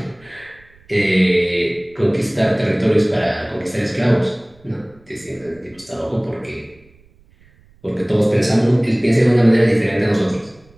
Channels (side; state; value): right; noise; rumble, 29 dB below the sound